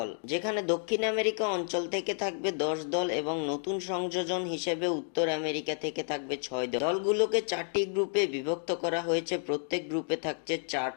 যেখানে দক্ষিণ আমেরিকা অঞ্চল থেকে থাকবে 10 দল এবং নতুন সংযোজন হিসেবে উত্তর আমেরিকা থেকে থাকবে 6 দল। দলগুলোকে 4টি গ্রুপে বিভক্ত করা হয়েছে, প্রত্যেক গ্রুপে থাকছে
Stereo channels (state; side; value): silent; right; 57 dB below the other